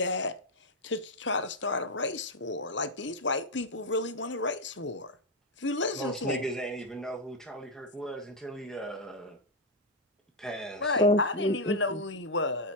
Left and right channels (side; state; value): both; normal; correlation 0.02